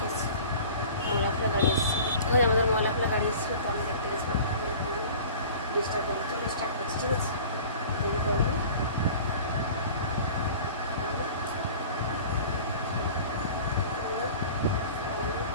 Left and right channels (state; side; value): inverted; both; correlation -0.42